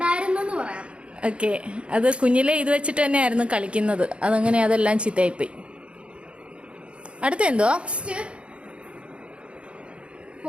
പറയാം. ഓക്കെ. അത് കുഞ്ഞിലെ ഇത് വെച്ചിട്ട് തന്നെയായിരുന്നു കളിക്കുന്നത്. അതങ്ങനെ അതെല്ലാം ചീത്തയായിപ്പോയി. അടുത്ത എന്തോ?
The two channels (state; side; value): late; left; 0.059 ms